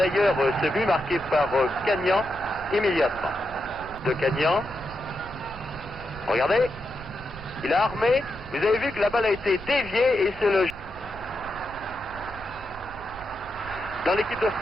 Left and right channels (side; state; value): right; noise; rumble, 15 dB below the sound